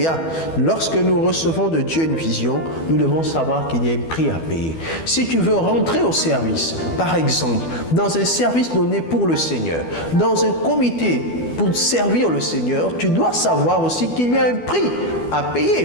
Lorsque nous recevons de Dieu une vision, nous devons savoir qu'il y a un prix à payer. Si tu veux rentrer au service, par exemple, dans un service donné pour le Seigneur, dans un comité pour servir le Seigneur, tu dois savoir aussi qu'il y a un prix à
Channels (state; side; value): late; right; 12 ms